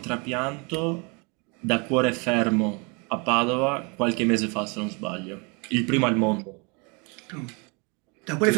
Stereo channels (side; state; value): left; quieter; 31.7 dB